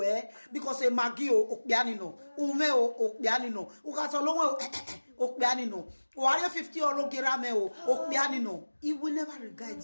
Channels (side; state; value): both; inverted; correlation -1.00